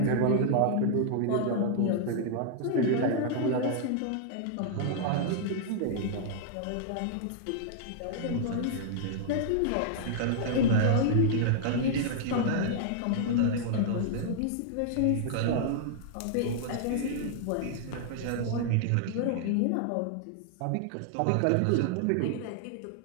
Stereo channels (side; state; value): both; different; correlation -0.01